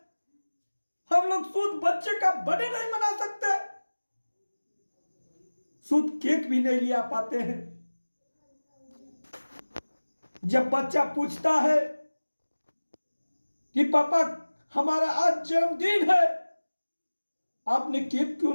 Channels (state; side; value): inverted; both; correlation -1.00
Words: हम लोग शुद्ध बच्चे का बर्थडे नहीं मना सकते, शुद्ध केक भी नहीं लिया पाते हैं। जब बच्चा पूछता है कि पापा हमारा आज जन्मदिन है, आपने केक क्यों